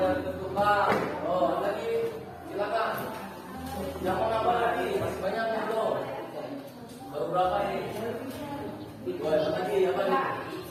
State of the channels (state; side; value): identical; both; correlation 1.00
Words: ditentukan. Oh, lagi Silakan. Yang mau nambah lagi, masih banyak yang belum. Baru berapa ini? Boleh lagi apa nih?